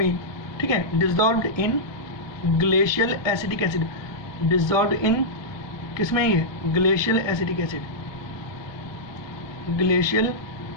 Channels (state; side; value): late; right; 1.2 ms